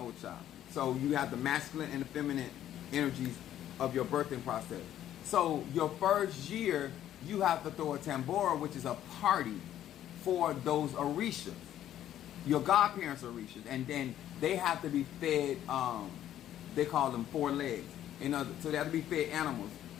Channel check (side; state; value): right; quieter; 11.7 dB